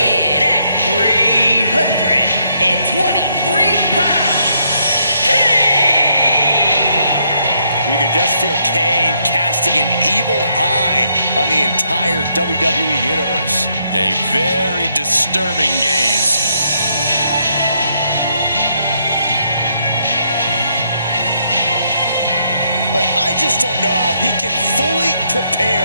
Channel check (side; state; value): both; inverted; correlation -0.74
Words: at 323 pounds, Kane! You can just feel Kane casting an evil eye on the entire WWE Universe. A very disturbing gaze. I just don't know how he can fully